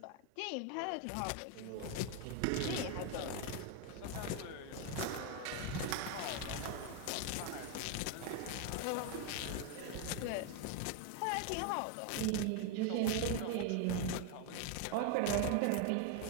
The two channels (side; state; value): both; different; correlation 0.01